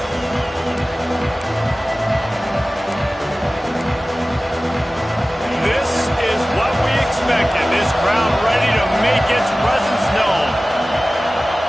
This is what we expected. This crowd ready to make its presence known.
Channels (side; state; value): both; normal; correlation 0.97